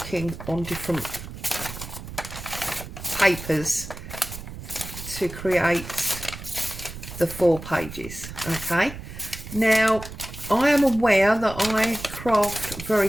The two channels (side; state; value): right; noise; rumble, 11 dB below the sound